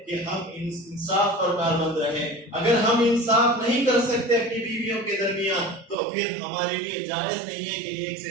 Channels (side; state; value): left; drops out; at 6.0 s